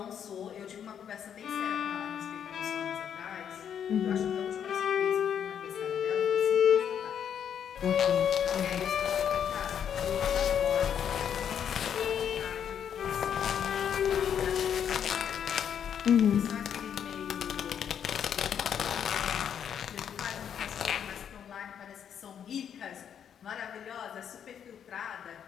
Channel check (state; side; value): quieter; right; 8.5 dB